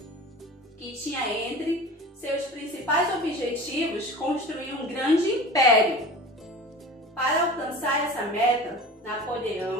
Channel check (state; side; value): normal; both; correlation 0.37